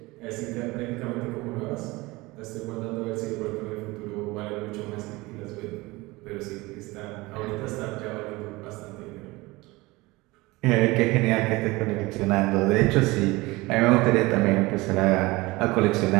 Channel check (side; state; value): left; quieter; 21.8 dB